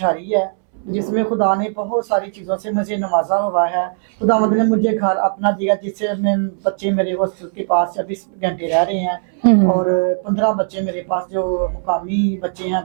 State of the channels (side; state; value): left; silent; 67 dB below the other